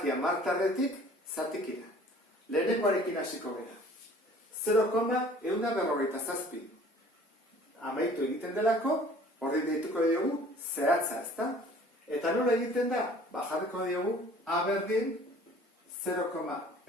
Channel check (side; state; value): both; normal; correlation 0.51